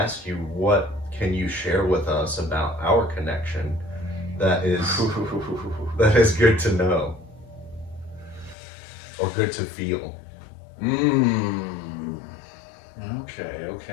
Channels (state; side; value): drops out; right; at 8.6 s